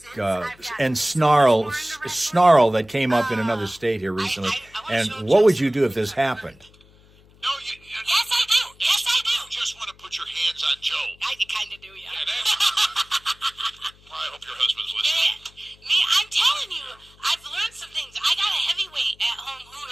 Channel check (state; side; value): noise; left; hum, 27 dB below the sound